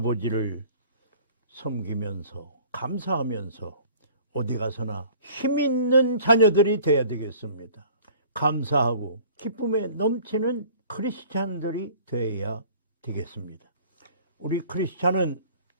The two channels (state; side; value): inverted; both; correlation -0.50